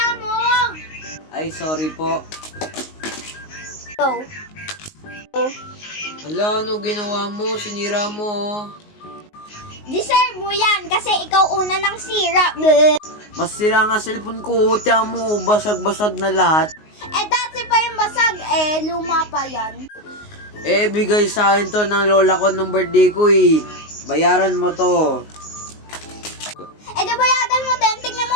mo. Ay, sorry po. Oh. Hala, ano ginawa mo? Sinira mo, oh. Deserve mo yan kasi ikaw una ng sira. Bleh. Mas sira nga cellphone ko. Tiyan mo, basag-basag na lahat. Eh, dati pa yung basag. Luma pa yan. Eh, bigay sa akin to ng lola ko nung birthday ko, eh. Bayaran mo to. Di bayadan mo din. Tingnan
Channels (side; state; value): right; late; 19 ms